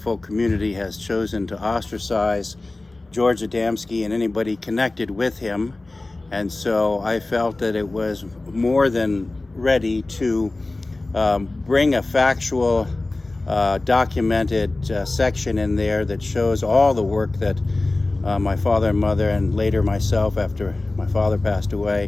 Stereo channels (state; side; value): quieter; right; 3.0 dB